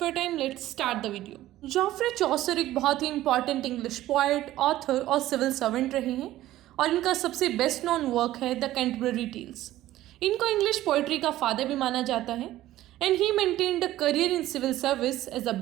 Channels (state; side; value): quieter; left; 14.8 dB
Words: your time, let's start the video. Geoffrey Chaucer एक बहुत ही इंपॉर्टेंट इंग्लिश पोएट, ऑथर और सिविल सर्वेंट रहे हैं और इनका सबसे बेस्ट नोन वर्क है द कैंटरबरी टेल्स। इनको इंग्लिश पोइट्री का फादर भी माना जाता है and he maintained a career in civil service as a